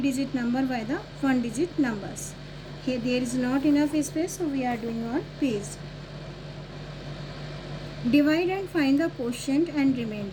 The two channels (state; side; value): identical; both; correlation 1.00